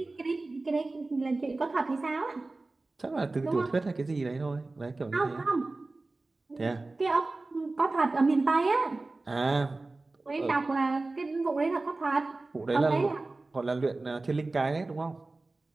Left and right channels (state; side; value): quieter; left; 3.2 dB